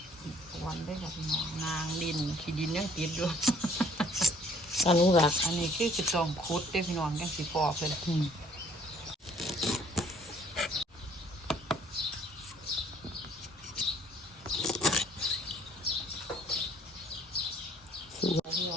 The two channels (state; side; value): normal; both; correlation 0.60